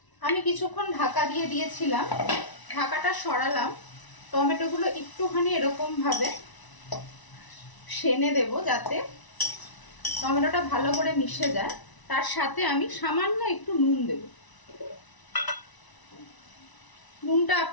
আমি কিছুক্ষণ ঢাকা দিয়ে দিয়েছিলাম, ঢাকাটা সরালাম। টমেটোগুলো একটুখানি এরকম ভাবে সেনে দেব যাতে টমেটোটা ভালো করে মিশে যায়। তার সাথে আমি সামান্য একটু নুন দেব। নুনটা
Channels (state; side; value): late; right; 1.0 ms